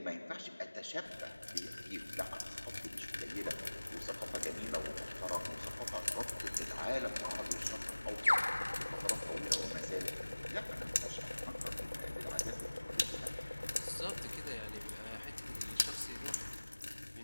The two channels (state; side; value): inverted; both; correlation -1.00